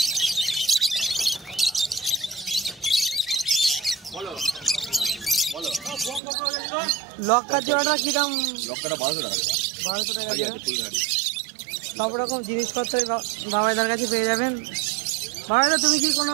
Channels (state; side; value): drops out; left; at 6.2 s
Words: লক্কা জোড়াটা কি দাম? লক্ষ্যটা 1200 টাকা। 1200 টাকা জোড়া। সব রকম জিনিসপত্র বাবাইদার কাছে পেয়ে যাবেন। বাবাইদা তুমি কি কোনো